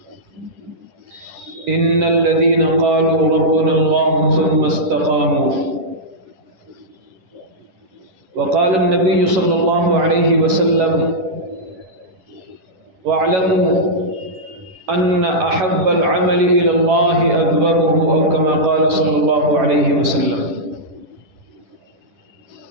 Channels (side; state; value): left; late; 10 ms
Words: إن الذين قالوا ربنا الله ثم استقاموا وقال النبي صلى الله عليه وسلم واعلموا أن أحب العمل إلى الله أدومه أو كما قال صلى الله عليه وسلم۔